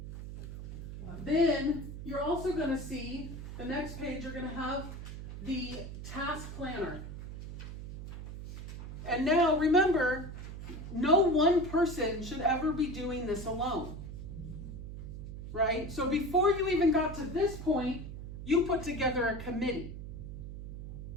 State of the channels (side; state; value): right; noise; hum, 9 dB below the sound